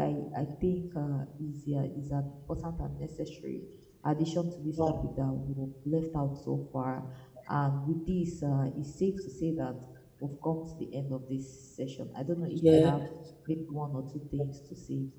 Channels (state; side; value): identical; both; correlation 1.00